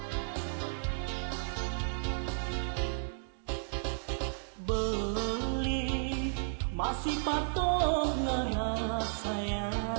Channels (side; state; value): left; silent; digital silence